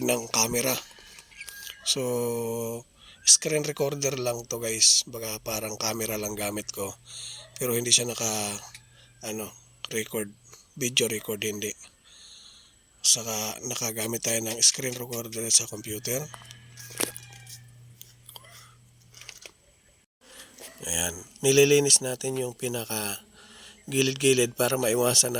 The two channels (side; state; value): both; identical; correlation 1.00